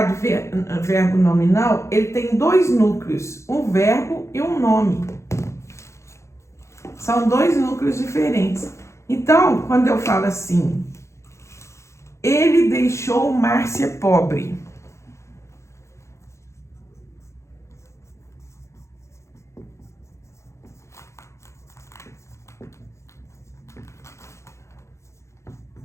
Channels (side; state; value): right; late; 0.14 ms